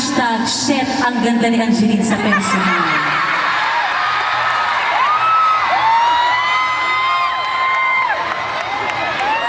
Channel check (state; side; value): identical; both; correlation 1.00